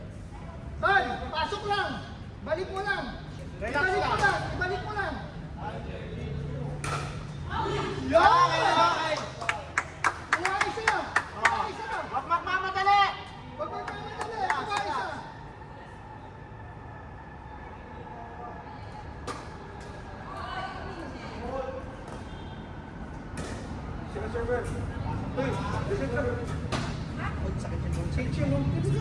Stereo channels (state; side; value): identical; both; correlation 1.00